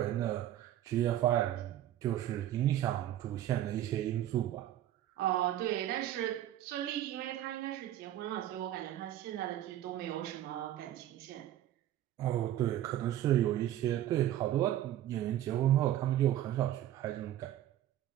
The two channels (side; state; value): left; quieter; 12.5 dB